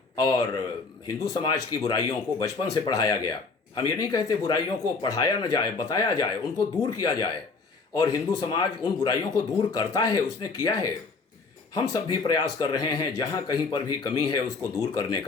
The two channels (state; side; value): quieter; right; 4.3 dB